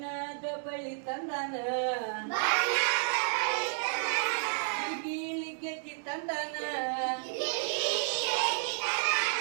ಬಳಿ ತಂದಾನ ಗಿಲಿ ಗೆಜ್ಜಿ ತಂದಾನ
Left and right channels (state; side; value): silent; left; digital silence